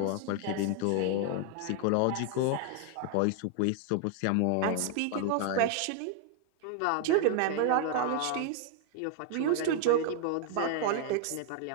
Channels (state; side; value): different; both; correlation 0.00